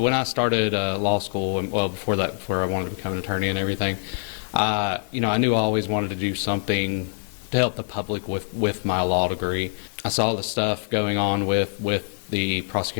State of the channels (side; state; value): right; silent; digital silence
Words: I started law school, and well, before that, before I wanted to become an attorney and everything, I knew I always wanted to do something to help the public with my law degree. I saw the stuff going on with the